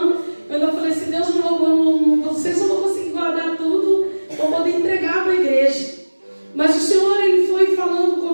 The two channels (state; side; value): inverted; both; correlation -1.00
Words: Eu ainda falei assim: Deus, vocês não vão conseguir guardar tudo, vou poder entregar para a igreja. Mas o Senhor, Ele foi falando